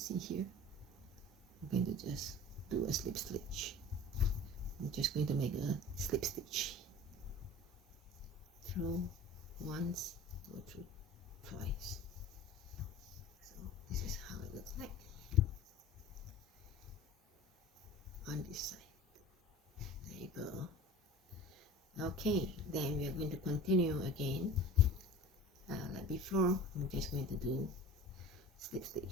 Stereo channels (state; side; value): normal; both; correlation 0.40